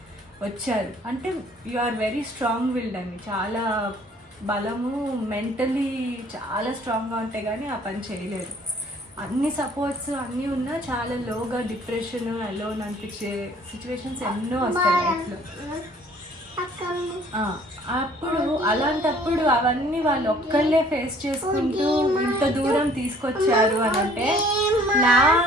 వచ్చారు అంటే you are very strong willed అండి, చాలా బలము, మెంటలీ చాలా స్ట్రాంగ్గా ఉంటే కానీ ఆ పని చేయలేరు. అన్ని సపోర్ట్స్ అన్నీ ఉన్నా చాలా లోగా డిప్రెషన్ అలోన్ అనిపించే సిచ్యువేషన్స్ ఎన్నో వస్తాయి లైఫ్లో. అప్పుడు అలాంటప్పుడు అవన్నీ వాళ్ళు ఒక్కళ్ళే ఫేస్ చేసుకుంటూ ఇంత దూరం తీసుకొచ్చారు అని అంటే నా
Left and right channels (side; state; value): both; normal; correlation 0.56